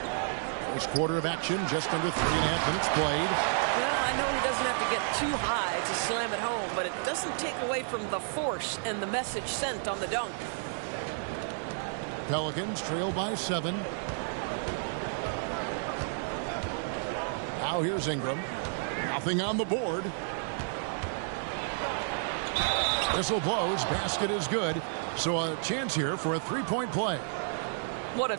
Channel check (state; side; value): silent; left; digital silence